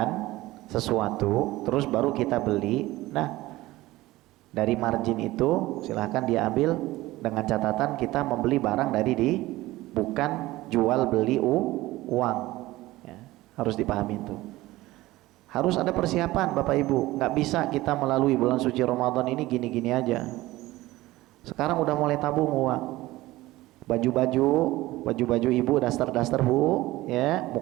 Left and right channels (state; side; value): quieter; left; 18.0 dB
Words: sesuatu, terus baru kita beli. Nah, dari margin itu silahkan dia ambil dengan catatan kita membeli barang dari bukan jual beli uang. Ya, harus dipahami itu. Harus ada persiapan Bapak Ibu. Nggak bisa kita melalui bulan suci Ramadan ini gini-gini aja. Sekarang udah mulai tabung uang. Baju-baju ibu, daster-daster Bu, ya,